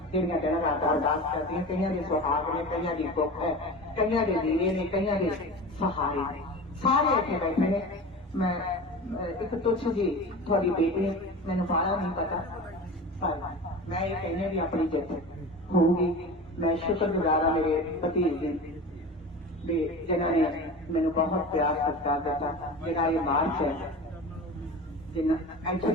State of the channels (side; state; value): both; normal; correlation 0.32